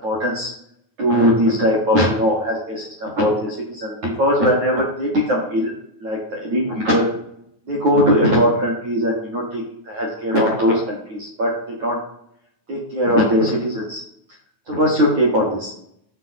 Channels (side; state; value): left; late; 9.4 ms